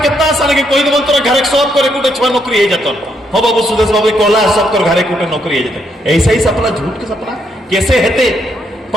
आसान है कि कोई दिन तोरा घरे सब करे कुटे छुआ नौकरी है जाता हो बाबू सुदेश बाबू कहला सब कर घरे कुटे नौकरी है जाता। ऐसा ही सपना, झूठ के सपना कैसे हेते?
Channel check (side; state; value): both; normal; correlation 0.75